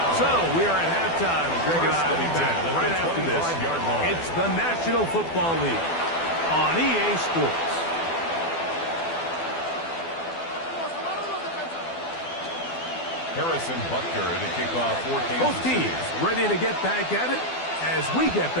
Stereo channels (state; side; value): late; right; 12 ms